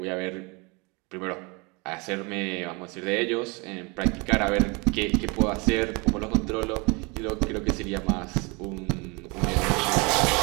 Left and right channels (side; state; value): left; quieter; 28.5 dB